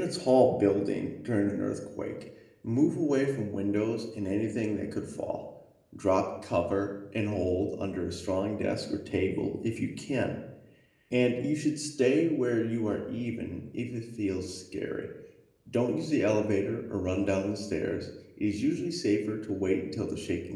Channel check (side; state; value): both; identical; correlation 1.00